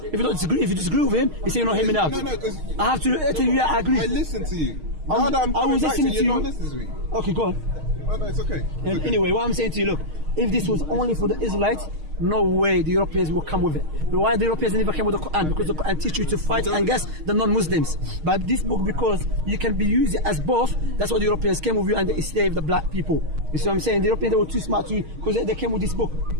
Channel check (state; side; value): late; left; 6.4 ms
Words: you disagree with him, you say you're not hearing me out. No, because I have to tell you, I agree. I listen to you. Now that I'm coming back to you, you're not listening to me. Okay, go on. Oh, no, it's okay. Anyway, what I'm saying to you, look, if this was only for the Israelites, no way the Europeans will come with it. But why the Europeans never came with the Quran? Because the Quran teaches you to fight against the non-Muslims. But this book, because you can be used as both, that's why the Europeans came with you and they enslaved the black people. You see what I'm saying? The Europeans, they were too smart to you because they came with this book.